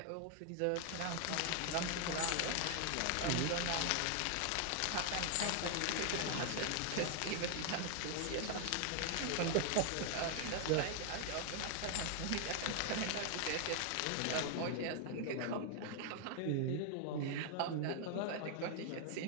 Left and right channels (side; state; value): both; different; correlation 0.00